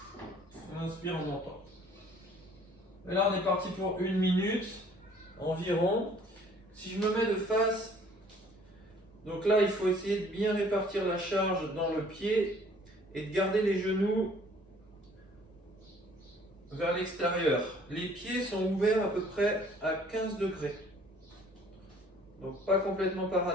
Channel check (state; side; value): normal; both; correlation 0.56